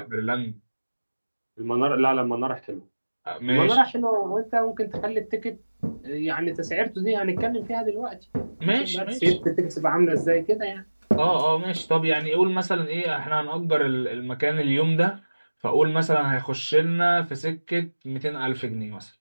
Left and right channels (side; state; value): both; inverted; correlation -1.00